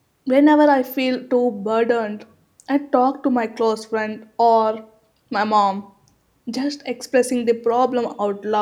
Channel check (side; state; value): both; identical; correlation 1.00